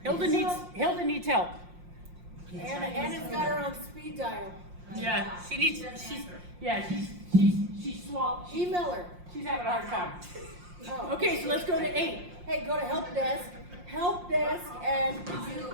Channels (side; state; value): left; late; 5.6 ms